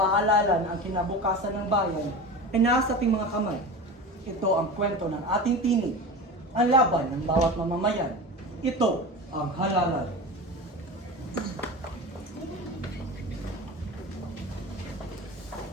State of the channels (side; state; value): both; normal; correlation 0.30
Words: na ang kinabukasan ng bayan ay nasa ating mga kamay. Ito ang kwento ng ating tinig, ang laban ng bawat mamamayan. Ito ang halalan.